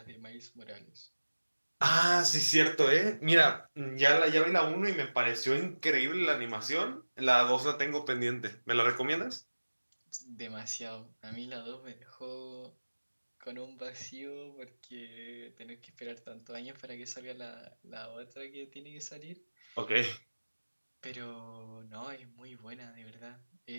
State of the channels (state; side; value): inverted; both; correlation -1.00